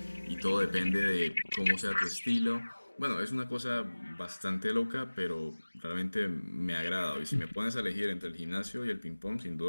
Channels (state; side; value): inverted; both; correlation -1.00